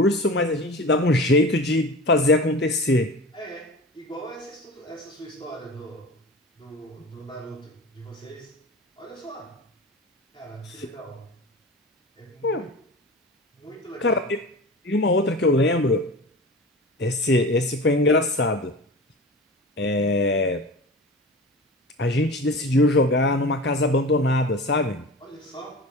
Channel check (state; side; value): normal; both; correlation 0.33